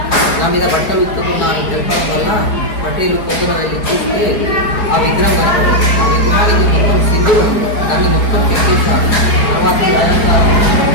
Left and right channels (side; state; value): right; late; 4.3 ms